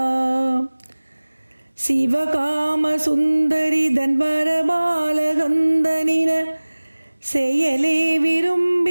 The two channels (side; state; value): both; inverted; correlation -1.00